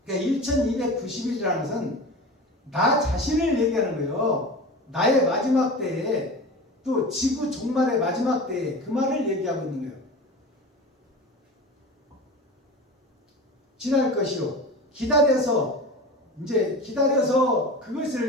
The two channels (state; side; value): normal; both; correlation 0.33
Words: 그러니까 1290일이라는 것은 나 자신을 얘기하는 거예요. 나의 마지막 때에, 또 지구 종말의 마지막 때에 그 말을 얘기하고 있는 거예요. 지날 것이요, 기다려서, 이제 기다려서,